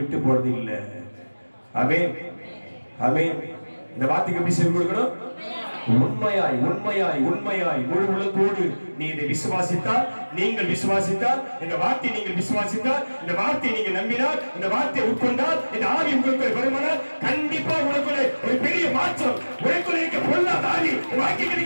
போறது இல்லை. ஆமென், ஆமென். இந்த வார்த்தைக்கு எப்படி செவி கொடுக்கணும்? உண்மையாய், உண்மையாய், உண்மையாய், முழு உள்ளத்தோடு நீ இதை விசுவாசித்தால், நீங்கள் விசுவாசித்தால், இந்த வார்த்தை நீங்கள் விசுவாசித்தால், இந்த வார்த்தை நீங்க நம்பினால், இந்த வார்த்தையை உட்கொண்டால், இந்த ஆவி உங்களுக்கு வருமானால், கண்டிப்பா உனக்குள்ளே ஒரு பெரிய மாற்றம். உனக்குள்ளே இருக்க பொல்லாத ஆவி, வாக்கி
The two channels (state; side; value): inverted; both; correlation -1.00